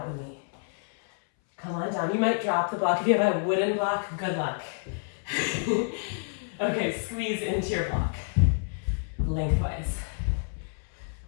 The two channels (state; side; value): silent; right; 59 dB below the other